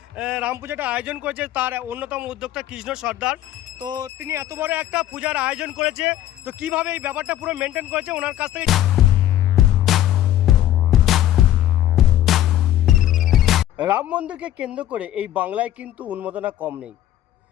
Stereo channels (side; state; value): right; quieter; 12.7 dB